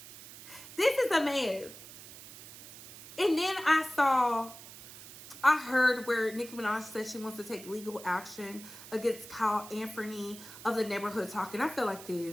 This is a mess. And then I heard where Nicki Minaj said she wants to take legal action against Kyle Anthony of the Neighborhood Talk. And I feel like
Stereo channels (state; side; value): noise; right; hiss, 16 dB below the sound